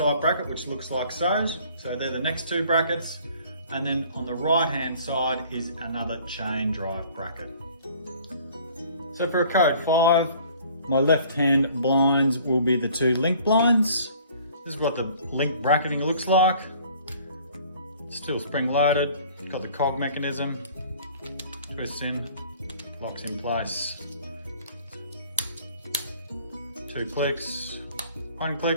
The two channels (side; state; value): both; inverted; correlation -0.53